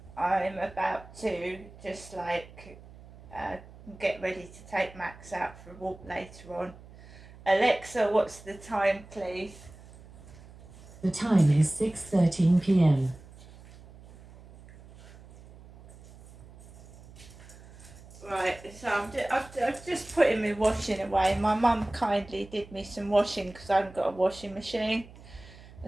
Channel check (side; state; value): right; noise; hum, 20 dB below the sound